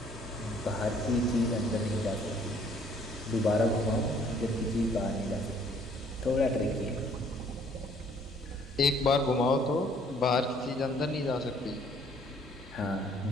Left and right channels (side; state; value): both; normal; correlation 0.61